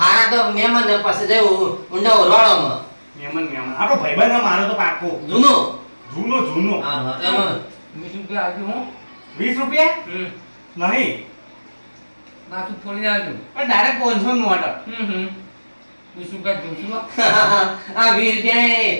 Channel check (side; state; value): both; inverted; correlation -1.00